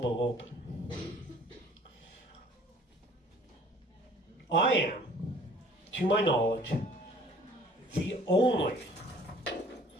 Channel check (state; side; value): normal; both; correlation 0.53